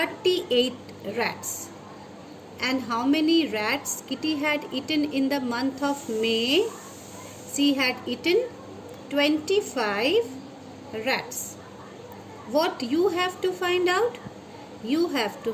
rats. And how many rats Kitty had eaten in the month of May? She had eaten 25 rats. What you have to find out? You have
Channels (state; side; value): identical; both; correlation 1.00